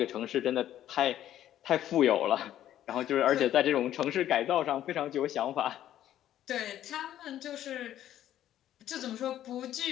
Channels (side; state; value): right; quieter; 11.9 dB